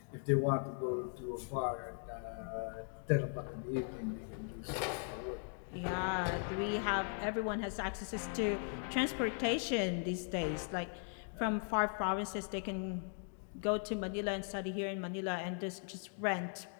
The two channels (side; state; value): right; silent; 52 dB below the other